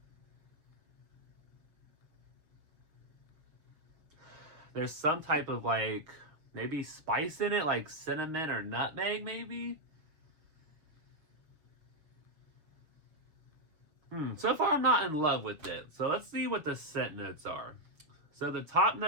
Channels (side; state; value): left; late; 6.5 ms